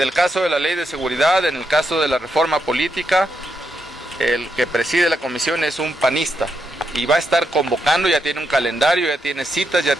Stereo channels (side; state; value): both; normal; correlation 0.82